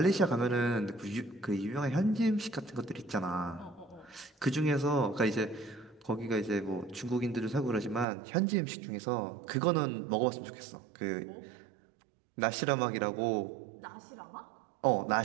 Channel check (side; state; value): left; drops out; at 8.1 s